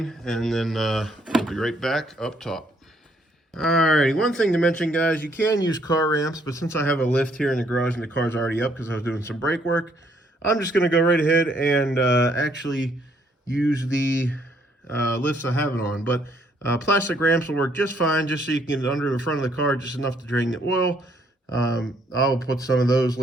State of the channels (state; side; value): normal; both; correlation 0.68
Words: and then we'll be right back up top. Alrighty, one thing to mention, guys, you can use car ramps, but since I have a lift here in the garage and the car's already up because I was doing some brake work, I'm just going to go right ahead and actually use the lifts I have it on. But plastic ramps will work just fine, just so you can get under the front of the car just enough to drain the oil. I'll put some of those